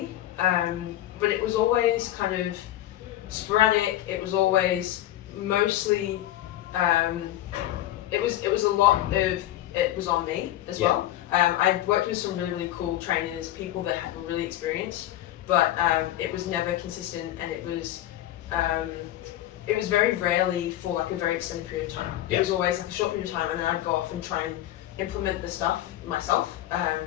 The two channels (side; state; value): right; quieter; 13.8 dB